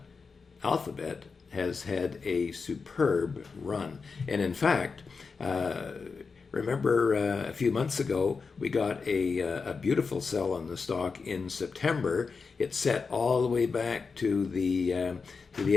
Alphabet has had a superb run. And in fact, remember a few months ago, we got a beautiful sell on the stock in September. It set all the way back to the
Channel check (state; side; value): quieter; right; 4.9 dB